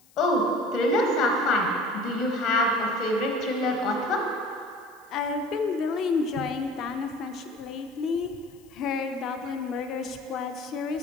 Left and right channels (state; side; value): noise; left; hiss, 29 dB below the sound